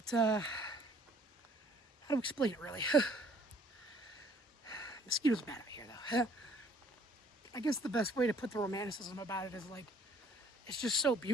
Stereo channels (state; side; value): normal; both; correlation 0.59